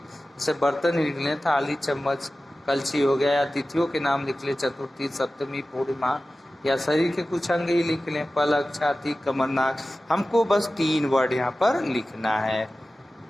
बर्तन लिख लें, थाली, चम्मच, कलछी हो गया, या तिथियों के नाम लिख लें, चतुर्थी, सप्तमी, पूर्णिमा, या शरीर के कुछ अंग ही लिख लें, पलक, छाती, कमर, नाक। हमको बस 3 वर्ड यहाँ पर लिखना है।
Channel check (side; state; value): both; normal; correlation 0.96